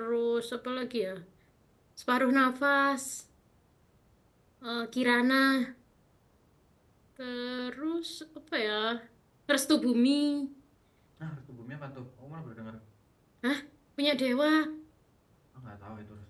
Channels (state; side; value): identical; both; correlation 1.00